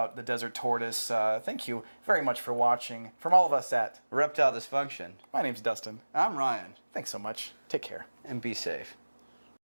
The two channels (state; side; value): inverted; both; correlation -1.00